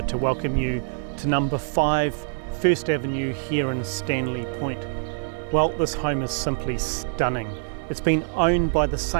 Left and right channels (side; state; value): left; silent; digital silence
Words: to welcome you to number 5 First Avenue here in Stanley Point. Well, this home is simply stunning. It's been owned by the